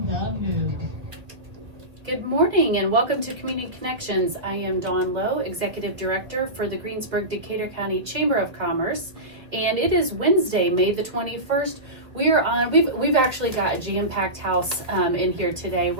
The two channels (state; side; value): late; left; 1.6 ms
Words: the move. Good morning and welcome to Community Connections. I am Dawn Lowe, Executive Director for the Greensburg-Decatur County Chamber of Commerce, and it is Wednesday, May the 21st. We've actually got a jam-packed house in here today.